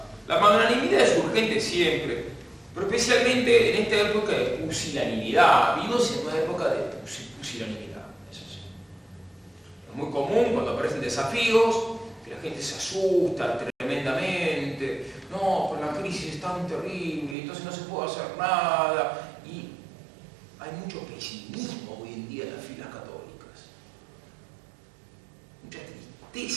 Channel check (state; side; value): drops out; left; at 17.4 s